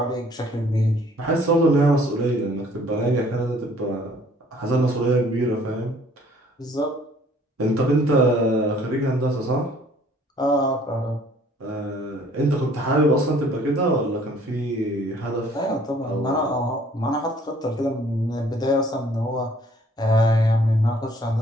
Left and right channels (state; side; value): normal; both; correlation 0.57